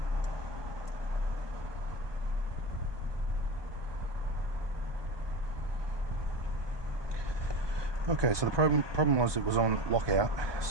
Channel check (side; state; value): left; late; 1.2 ms